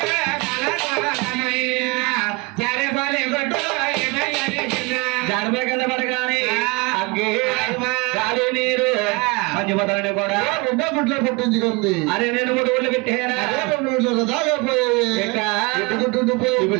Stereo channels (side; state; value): left; quieter; 26.5 dB